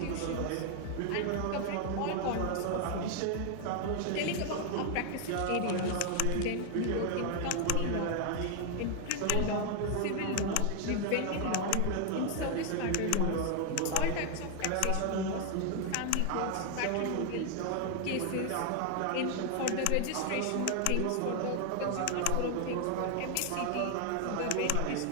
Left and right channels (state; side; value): different; both; correlation 0.00